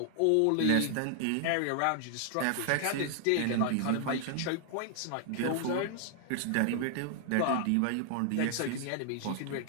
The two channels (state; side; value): different; both; correlation 0.00